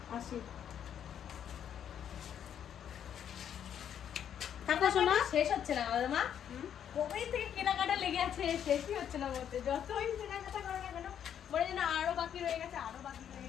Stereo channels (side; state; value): right; quieter; 9.2 dB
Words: আসি। থাকো শোনা। শেষ হচ্ছে না আমাদের মা, কবে থেকে কেনাকাটা লেগে আছে, শেষই হচ্ছে না বলতে। যতই কেনাকাটা করো না কেন মনে হয় যেন আরো বাকি রয়ে গেছে, আরো বাকি রয়ে